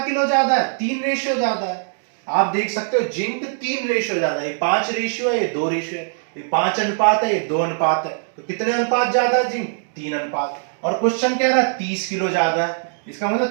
ज्यादा है? 3 रेशियो ज्यादा है। आप देख सकते हो जिंक 3 रेशियो ज्यादा है, ये 5 रेशियो है, ये 2 रेशियो है, ये 5 अनुपात है, ये 2 अनुपात है। तो कितने अनुपात ज्यादा है जिंक? 3 अनुपात। और क्वेश्चन कह रहा है 30 किलो ज्यादा है, इसका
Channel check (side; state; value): left; silent; digital silence